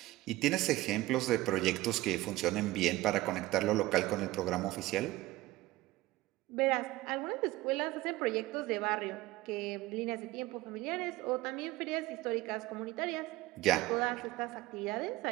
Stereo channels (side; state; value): left; quieter; 17.9 dB